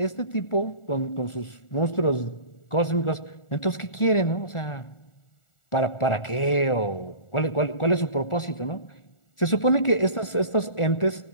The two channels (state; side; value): late; right; 1.4 ms